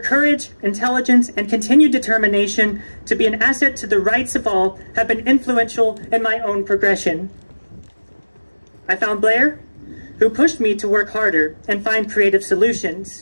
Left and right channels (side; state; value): both; inverted; correlation -1.00